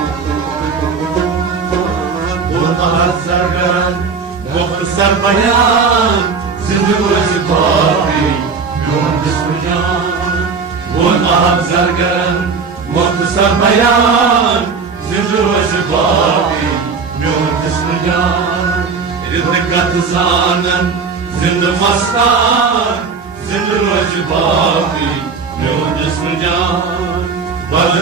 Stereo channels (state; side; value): quieter; left; 5.2 dB